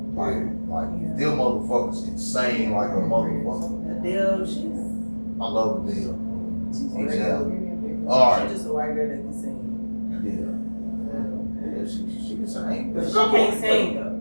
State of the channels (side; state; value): both; inverted; correlation -1.00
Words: like them motherfuckers can sing like a motherfucker. Adele, she's I love Adele. Exactly. she's Alright. just a white girl that can sing. Yeah, she can sing. But she can't sing though.